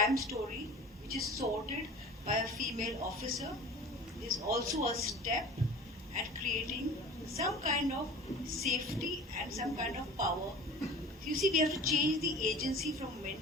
story which is sorted by a female officer is also a step at creating some kind of safety and some kind of power. You see, we have to change the agency from men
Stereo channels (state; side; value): normal; both; correlation 0.39